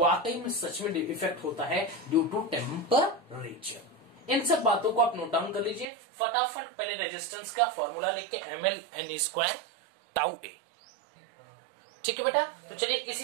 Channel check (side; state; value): left; drops out; at 5.9 s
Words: में सच में इफेक्ट होता है ड्यू टू टेम्परेचर। इन सब बातों को आप नोट डाउन कर लीजिए फटाफट। पहले रेजिस्टेंस का फॉर्मूला लिख के ml_n² τ A। ठीक है बेटा, तो चलिए